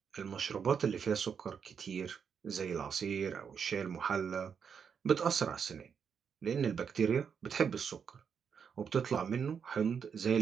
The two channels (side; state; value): left; quieter; 6.9 dB